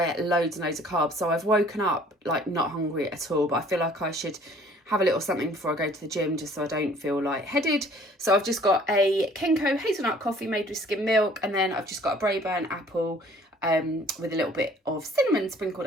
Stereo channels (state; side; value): normal; both; correlation 0.55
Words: ate loads and loads of carbs. So I've woken up not hungry at all. But I feel like I should have a little something before I go to the gym, just so I don't feel lightheaded. So I've just got a Kenko hazelnut coffee made with skim milk, and then I've just got a Braeburn apple. With a little bit of cinnamon sprinkled